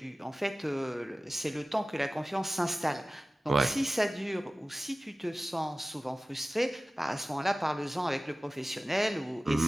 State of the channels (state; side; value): normal; both; correlation 0.96